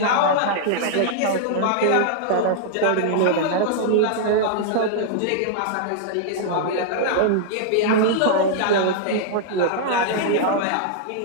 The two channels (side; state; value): both; different; correlation -0.01